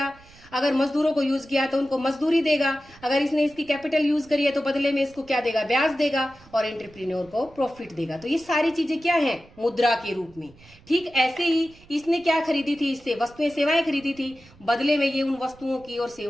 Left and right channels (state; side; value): noise; right; rumble, 25 dB below the sound